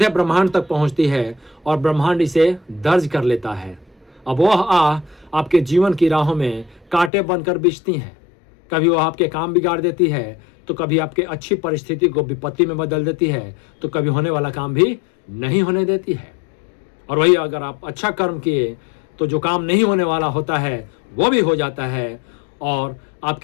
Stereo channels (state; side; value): drops out; right; at 7.1 s